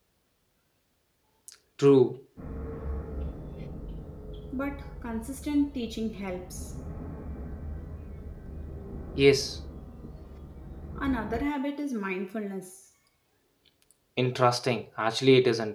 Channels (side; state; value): both; identical; correlation 1.00